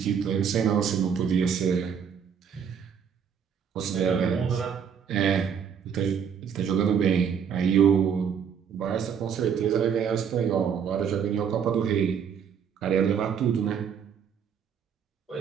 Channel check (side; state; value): left; quieter; 7.4 dB